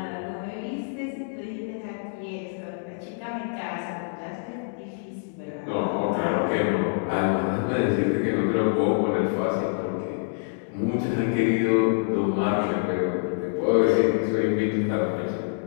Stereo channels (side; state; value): right; silent; digital silence